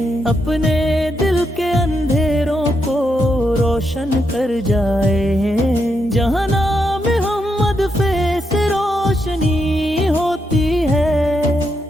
اپنے دل کے اندھیروں کو روشن کر جائے، جہاں نام محمد سے روشنی ہوتی ہے،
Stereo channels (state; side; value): normal; both; correlation 0.81